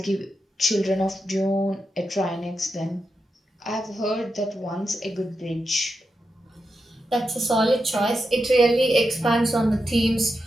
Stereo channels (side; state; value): both; normal; correlation 0.87